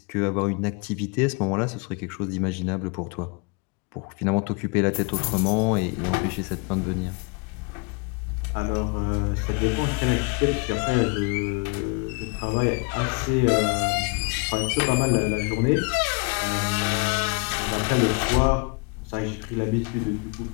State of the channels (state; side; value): quieter; right; 31.0 dB